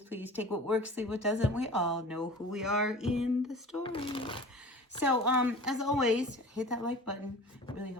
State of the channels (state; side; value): normal; both; correlation 0.40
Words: please take what works, leave what doesn't. We all know who we are in the story. So as always, hit that like button. It really